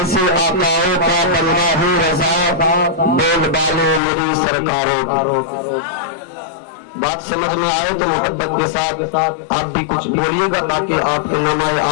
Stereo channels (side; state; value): right; drops out; at 4.0 s